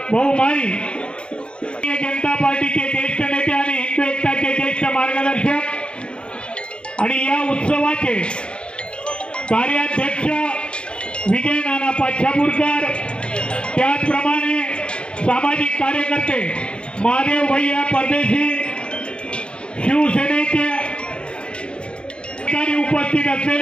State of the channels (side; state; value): right; late; 0.055 ms